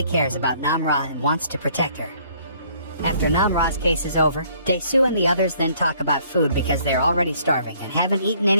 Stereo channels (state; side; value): inverted; both; correlation -0.62